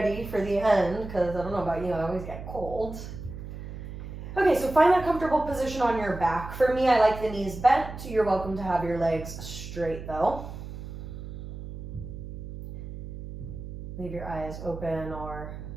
for the end, because I don't know about you, I always get cold. Okay, so find that comfortable position on your back. For me, I like the knees bent. You're welcome to have your legs straight though. Leave your eyes open or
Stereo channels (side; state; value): right; noise; hum, 10 dB below the sound